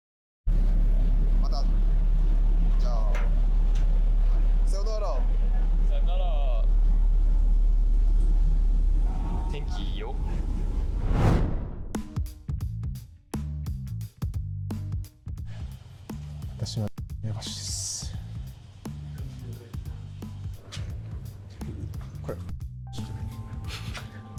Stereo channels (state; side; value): identical; both; correlation 1.00